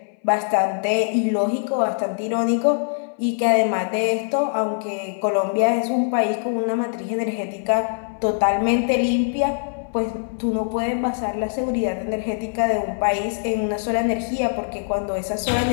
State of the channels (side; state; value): right; silent; 62 dB below the other